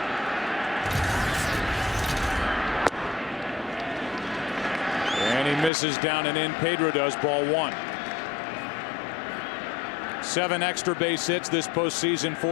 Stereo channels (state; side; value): drops out; right; at 5.7 s